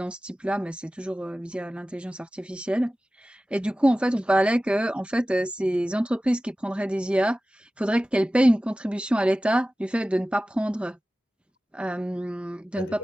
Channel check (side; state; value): both; normal; correlation 0.96